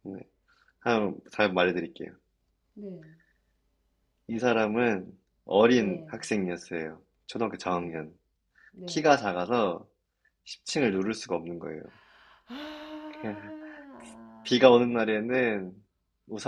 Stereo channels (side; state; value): both; identical; correlation 1.00